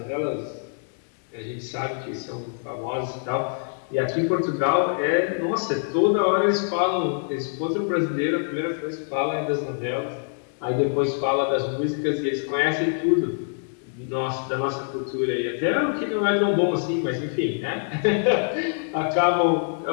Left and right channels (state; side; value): silent; right; 62 dB below the other